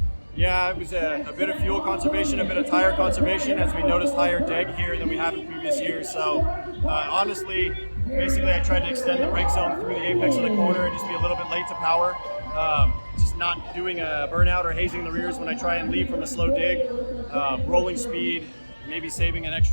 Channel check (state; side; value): inverted; both; correlation -1.00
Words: Yeah, it was a bit of fuel conservation, a bit of tire conservation, as we noticed higher deg here than we have in previous years. So honestly, basically I tried to extend the brake zone through the apex of the corner and just be a little bit late to power. Just not doing a burnout or hazing the rears when I try and leave from a slow dig. Rolling speed, maybe saving an